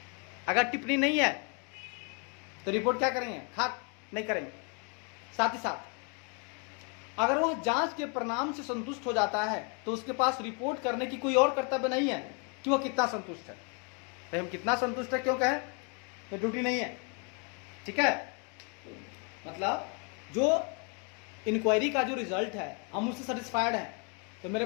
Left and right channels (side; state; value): right; quieter; 35.9 dB